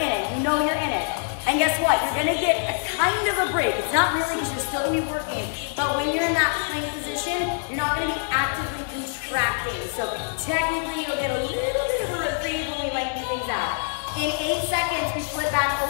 it. You know you're in it. And guess what? You're gonna get a kind of a break. It's not really because you're still gonna be working, but when you're in that plank position, you're not gonna be actively contracting. So technically you'll get a little bit of a reprieve when we lengthen things out. In 8 seconds, we flip back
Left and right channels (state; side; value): silent; right; digital silence